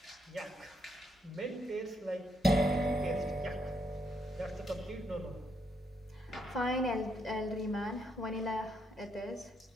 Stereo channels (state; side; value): normal; both; correlation 0.76